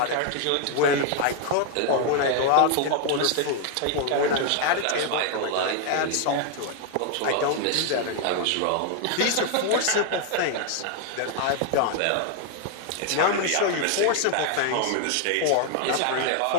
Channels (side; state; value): both; different; correlation 0.00